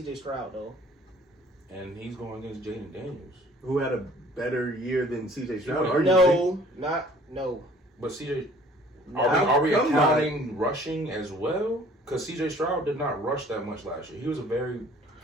Stroud though, and he's going against Jaden Daniels, who had a better year than CJ Stroud. No. But CJ, are we accounting rushing as well? Because CJ Stroud did not rush that much last year. He was a very,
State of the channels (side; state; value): both; normal; correlation 0.53